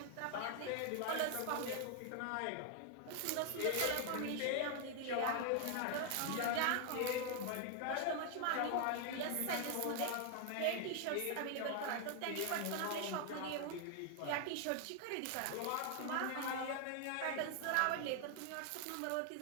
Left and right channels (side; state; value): both; different; correlation 0.00